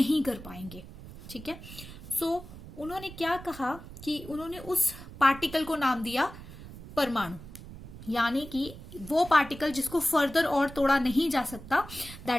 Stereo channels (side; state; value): right; noise; rumble, 15 dB below the sound